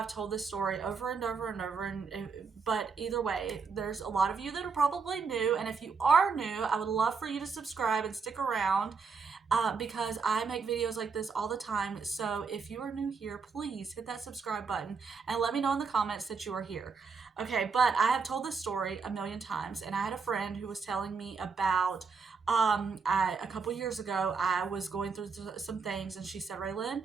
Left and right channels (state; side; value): quieter; left; 5.1 dB